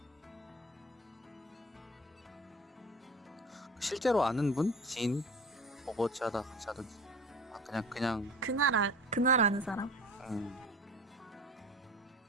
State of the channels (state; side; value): normal; both; correlation 0.38